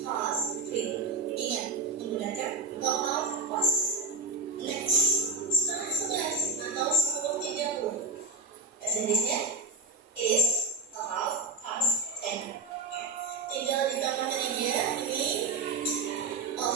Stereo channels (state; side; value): quieter; left; 3.7 dB